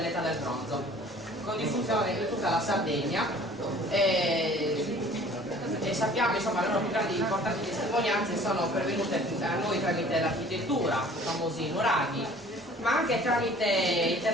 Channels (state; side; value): normal; both; correlation 0.50